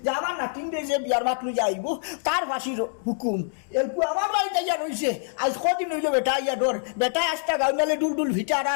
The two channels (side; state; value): right; silent; 61 dB below the other